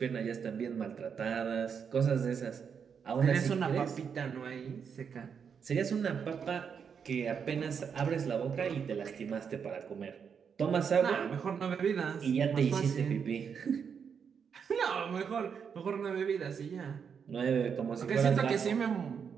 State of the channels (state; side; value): quieter; left; 6.8 dB